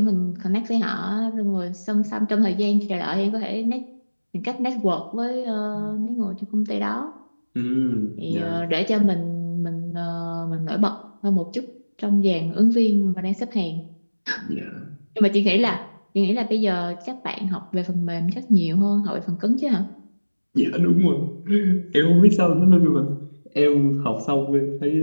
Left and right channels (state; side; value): inverted; both; correlation -1.00